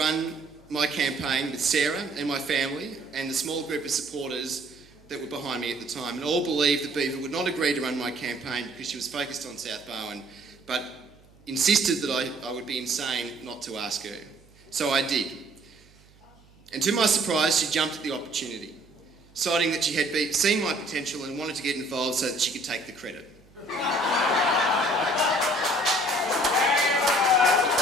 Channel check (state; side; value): noise; right; hum, 28 dB below the sound